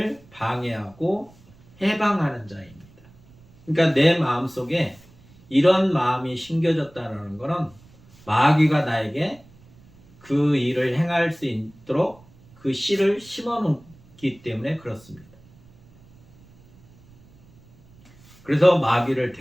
방해하고 해방하는 자입니다. 그러니까 내 마음속에 이런 마음이 심겨졌다는 것은 마귀가 나에게 그 일을 행할 수 있도록 그 씨를 심어놓기 때문에 그렇습니다. 그래서 마귀를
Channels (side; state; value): right; noise; rumble, 27 dB below the sound